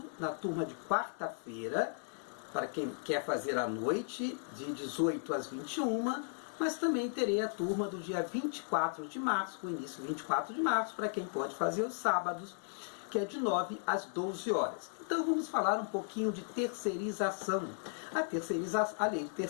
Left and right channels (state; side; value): silent; right; digital silence